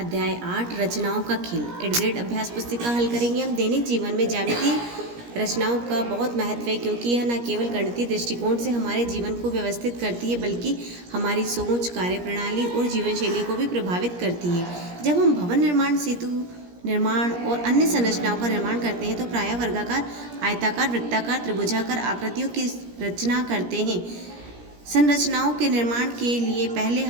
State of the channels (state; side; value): late; left; 17 ms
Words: 8 रचनाओं का खेल एड ग्रेड अभ्यास पुस्तिका हल करेंगे। हम दैनिक जीवन में ज्यामितीय रचनाओं का बहुत महत्व है, क्योंकि यह न केवल गणितीय दृष्टिकोण से हमारे जीवन को व्यवस्थित करती है, बल्कि हमारी सोच, कार्यप्रणाली और जीवन शैली को भी प्रभावित करती है। जब हम भवन निर्माण, सेतु निर्माण और अन्य संरचनाओं का निर्माण करते हैं तो प्रायः वर्गाकार, आयताकार, वृत्ताकार, त्रिभुजाकार आकृतियों की रचना करते हैं। संरचनाओं के निर्माण के लिए पहले